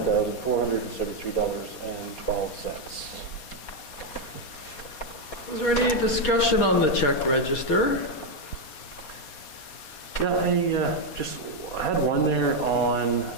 Is there any discussion on the check register? Yeah, I had one there on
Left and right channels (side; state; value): right; late; 4.2 ms